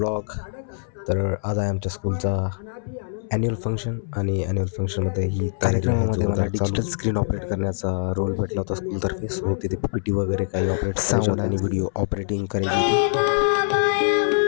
तर आज आहे आमच्या स्कूलचा ॲन्युअल फंक्शन आणि ॲन्युअल फंक्शनमध्ये ही कार्यक्रमामध्ये मला डिजिटल स्क्रीन ऑपरेट करण्याचा रोल भेटला होता स्कूलतर्फे. सो तिथे PPT वगैरे काही ऑपरेट साऊंड आणि व्हिडिओ ऑपरेटिंग करायची होती.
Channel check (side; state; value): right; silent; 63 dB below the other